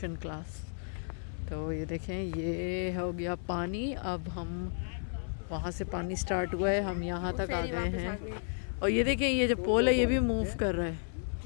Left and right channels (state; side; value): silent; right; 56 dB below the other